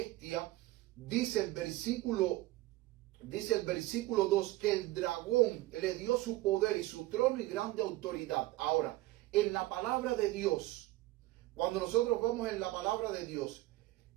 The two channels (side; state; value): left; quieter; 17.7 dB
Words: dice el versículo 2, que el dragón le dio su poder y su trono y grande autoridad. Ahora, en la palabra de Dios, cuando nosotros vamos en la palabra de Dios,